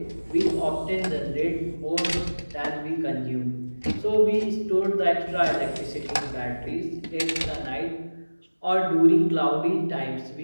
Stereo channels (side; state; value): both; inverted; correlation -1.00